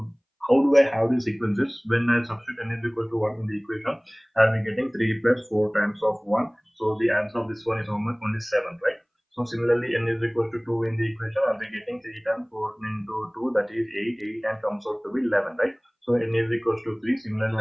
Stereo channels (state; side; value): identical; both; correlation 1.00